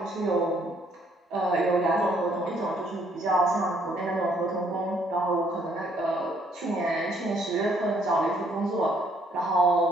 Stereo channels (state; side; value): normal; both; correlation 0.66